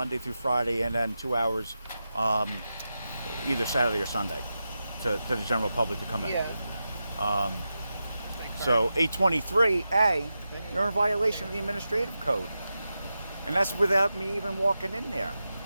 through Friday, and then 2 hours either Saturday or Sunday to the general public to come in. Yeah. So 823A, you're in violation of the administrative code. And that's without me even walking in there.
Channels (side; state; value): both; inverted; correlation -0.90